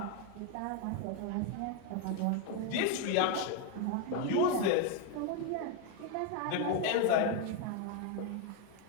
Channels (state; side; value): different; both; correlation 0.01